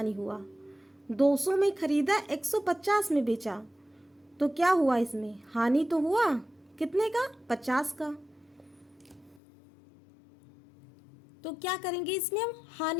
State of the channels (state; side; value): drops out; right; at 9.4 s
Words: हुआ। 200 में खरीदा, 150 में बेचा, तो क्या हुआ, इसमें हानि तो हुआ। कितने का, 50 का। तो क्या करेंगे, इसमें हम